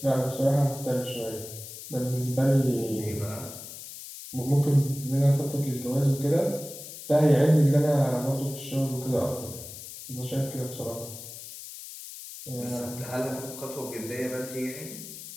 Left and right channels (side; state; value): left; noise; hiss, 12 dB below the sound